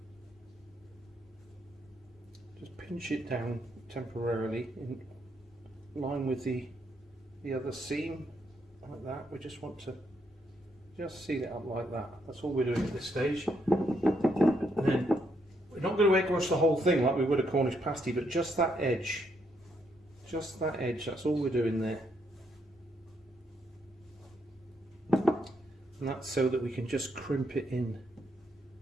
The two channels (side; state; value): both; normal; correlation 0.76